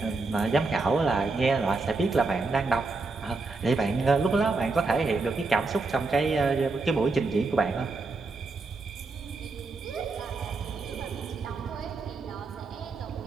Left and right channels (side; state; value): left; quieter; 3.7 dB